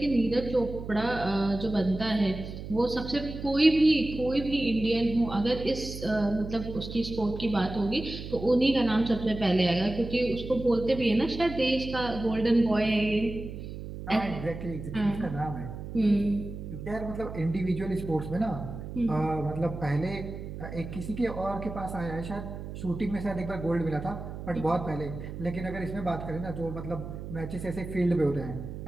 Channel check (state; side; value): noise; right; hum, 9 dB below the sound